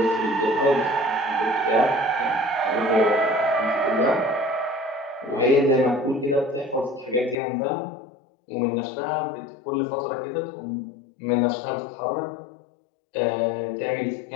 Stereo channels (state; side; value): drops out; right; at 7.4 s